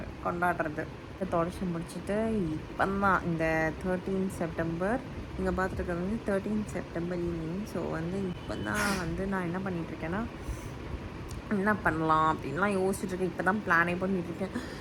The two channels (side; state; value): both; identical; correlation 1.00